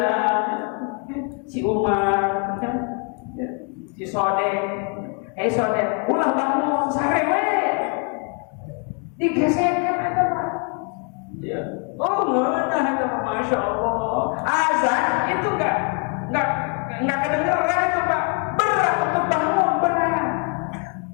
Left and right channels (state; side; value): quieter; right; 36.8 dB